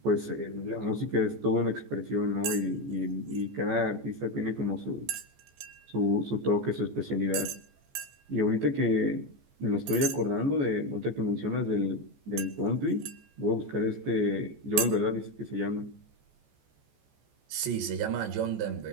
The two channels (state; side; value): late; left; 14 ms